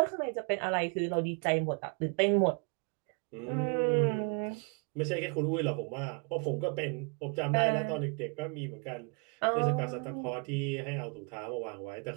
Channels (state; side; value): quieter; left; 35.7 dB